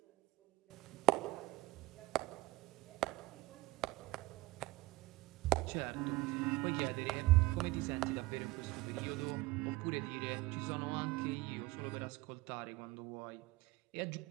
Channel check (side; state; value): left; quieter; 19.5 dB